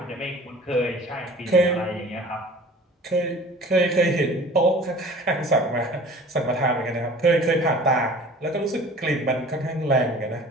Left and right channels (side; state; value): both; normal; correlation 0.45